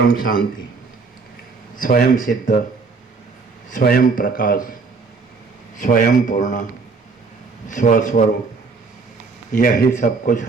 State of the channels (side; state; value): left; quieter; 4.5 dB